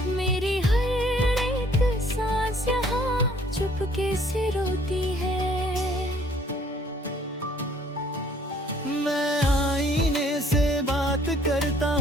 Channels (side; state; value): both; normal; correlation 0.59